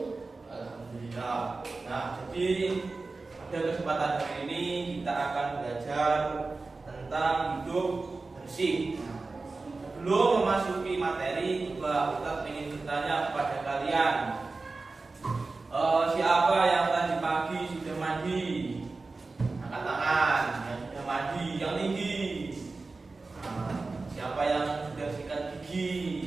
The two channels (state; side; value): quieter; left; 3.7 dB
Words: Alhamdulillah. Nah, jadi pada kesempatan hari ini kita akan belajar tentang hidup bersih. Sebelum memasuki materi, Pak Ustadz ingin bertanya kepada kalian, siapa yang tadi pagi sudah mandi? Angkat tangan. Yang sudah mandi, yang tinggi. Siapa yang sudah sikat